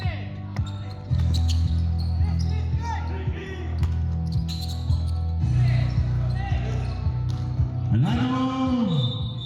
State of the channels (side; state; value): both; identical; correlation 1.00